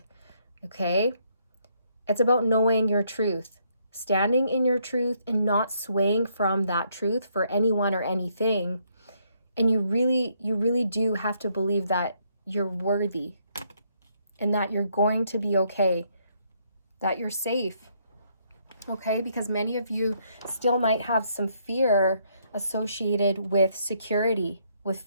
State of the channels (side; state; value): both; inverted; correlation -0.72